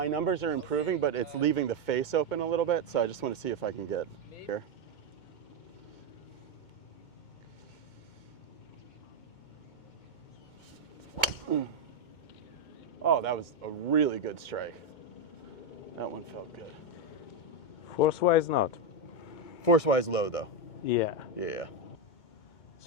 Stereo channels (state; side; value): late; right; 2.2 ms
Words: numbers are improving, but it's leaving the face open a little bit, so I just want to see if I can get here. Oh, that was a really good strike. That one felt good. Force-wise, not. Force-wise low though. Yeah. Yeah.